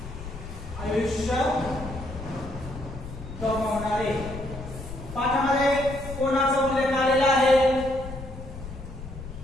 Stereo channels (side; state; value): left; noise; rumble, 11 dB below the sound